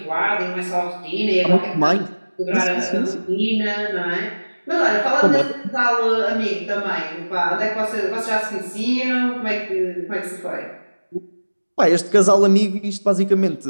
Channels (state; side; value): inverted; both; correlation -1.00